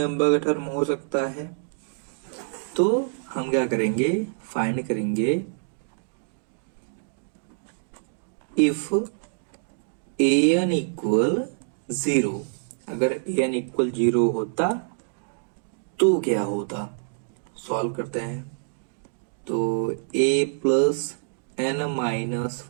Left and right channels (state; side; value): silent; left; digital silence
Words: का टर्म हो सकता है। तो हम क्या करेंगे, फाइंड करेंगे इफ an इक्वल 0, अगर an इक्वल 0 होता तो क्या होता। सॉल्व करते हैं, तो a plus n minus